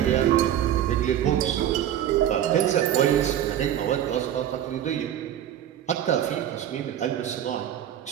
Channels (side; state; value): left; quieter; 10.9 dB